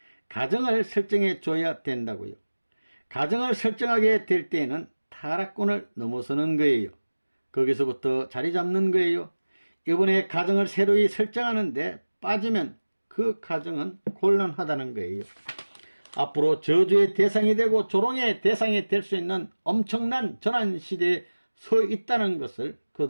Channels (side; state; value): both; inverted; correlation -1.00